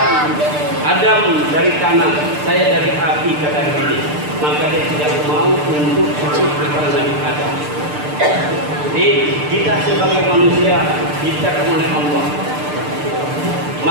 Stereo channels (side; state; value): left; late; 6.7 ms